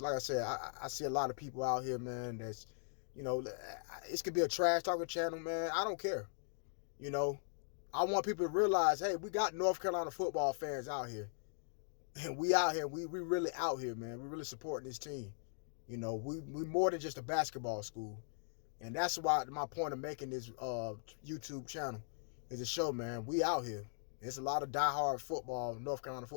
like I said, I see a lot of people out here, man, that's, you know, it could be a trash talking channel, man. I don't care. You know, I want people to realize, hey, we got North Carolina football fans out here. And we out here, we really out here, man. We really supporting this team. You know, we more than just a basketball school. And that's why my point of making this YouTube channel is to show, man, we out here. There's a lot of diehard football, North Carolina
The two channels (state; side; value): silent; right; digital silence